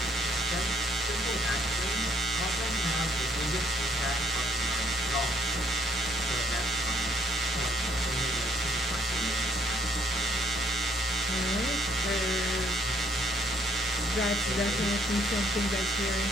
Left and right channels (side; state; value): both; normal; correlation 0.67